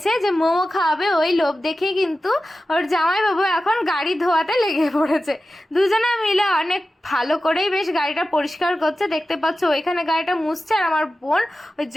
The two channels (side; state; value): both; normal; correlation 0.94